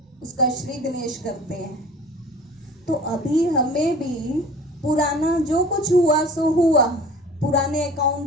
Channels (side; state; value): both; normal; correlation 0.43